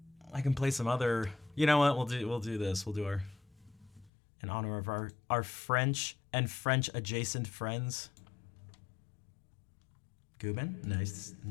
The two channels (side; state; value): right; drops out; at 4.1 s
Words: I can play some other. You know what? We'll do this. We'll do our in honor of our French and French adjacent friends. Gubin, nice